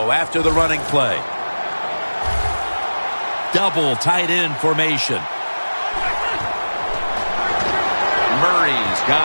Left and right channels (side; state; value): both; inverted; correlation -1.00